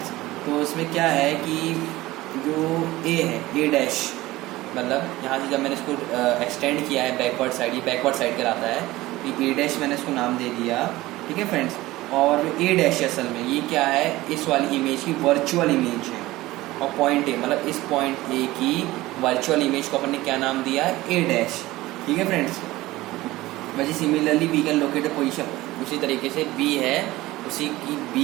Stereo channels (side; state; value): left; quieter; 18.1 dB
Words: तो इसमें क्या है कि जो A है, A डैश, मतलब यहाँ से जब मैंने इसको एक्सटेंड किया है बैकवर्ड साइड, ये बैकवर्ड साइड कहलाता है, ये A डैश मैंने इसको नाम दे दिया। ठीक है फ्रेंड्स, और ए डैश असल में ये क्या है, इस वाली इमेज की वर्चुअल इमेज है, और पॉइंट ए मतलब इस पॉइंट ए की वर्चुअल इमेज को अपन ने क्या नाम दिया है, ए डैश। ठीक है फ्रेंड्स, वैसे similarly we can locate the position, उसी तरीके से बी है, उसी की